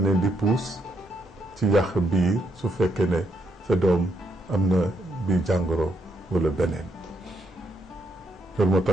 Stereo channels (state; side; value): normal; both; correlation 0.77